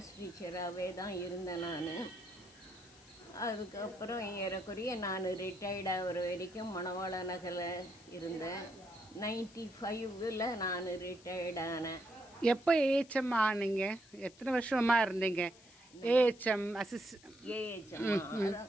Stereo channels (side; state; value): left; noise; hiss, 24 dB below the sound